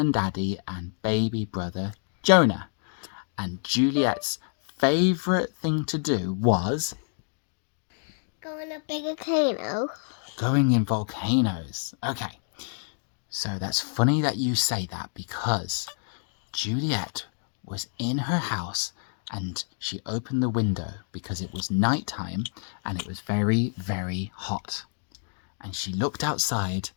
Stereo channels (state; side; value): silent; right; digital silence